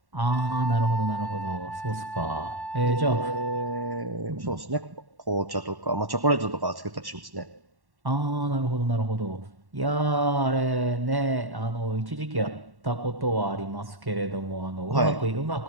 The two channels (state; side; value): late; left; 1.1 ms